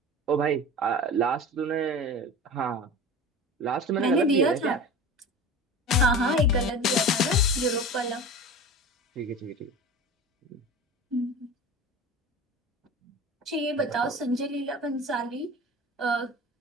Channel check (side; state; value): both; normal; correlation 0.33